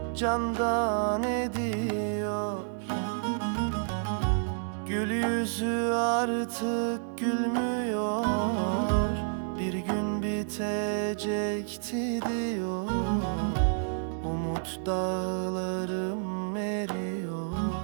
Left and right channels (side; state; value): left; silent; digital silence